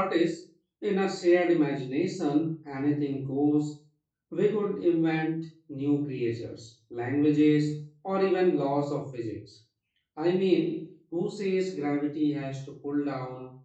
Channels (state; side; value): identical; both; correlation 1.00